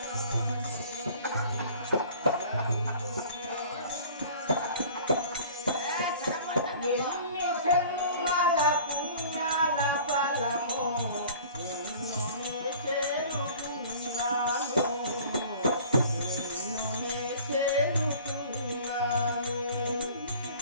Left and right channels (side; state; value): both; inverted; correlation -0.46